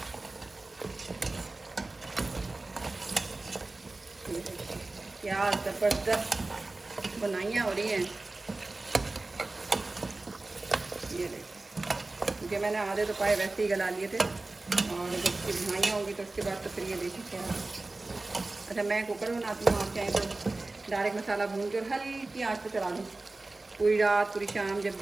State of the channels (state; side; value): quieter; left; 3.2 dB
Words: क्या ज़बरदस्त बुनाइयाँ हो रही हैं। ये देखिए क्योंकि मैंने आधे तो पाए वैसे ही गला लिए थे और जब इसकी बुनाइयाँ होंगी तो उसके बाद तो फिर ये देखिए क्या। अच्छा मैं कुकर में बनाती हूँ, आप चाहें तो डायरेक्ट मसाला भून के और हल्की आँच पे चला दूँ पूरी रात पूरी शाम जब